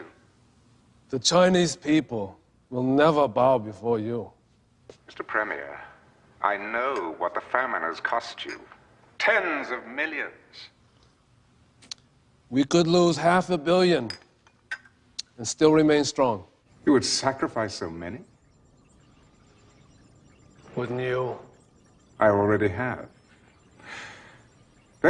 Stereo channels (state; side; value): identical; both; correlation 1.00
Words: The Chinese people will never bow before you. Mr. Premier, I know what the famine has cost you. Tens of millions. We could lose 500 million and still remain strong. You would sacrifice so many? Wouldn't you? I already have.